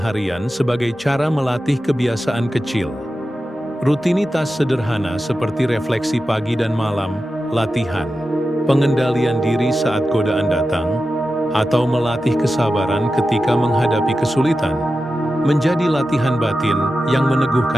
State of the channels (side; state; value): both; normal; correlation 0.92